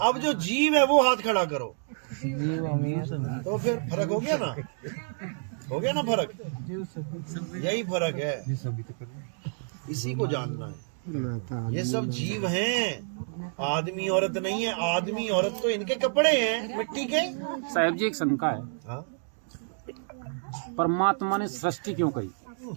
अब जो जीव है वो हाथ खड़ा करो। तो फिर फर्क हो गया ना? हो गया ना फर्क? यही फर्क है, इसी को जानना है। ये सब जीव हैं, आदमी औरत नहीं है। आदमी औरत तो इनके कपड़े हैं मिट्टी के। साहब जी एक शंका है, हाँ? परमात्मा ने सृष्टि क्यों करी?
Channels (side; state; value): left; silent; digital silence